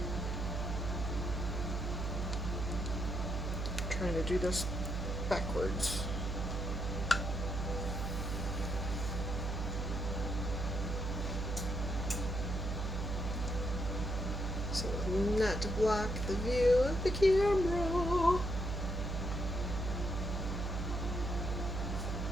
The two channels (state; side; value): noise; right; hum, 2 dB below the sound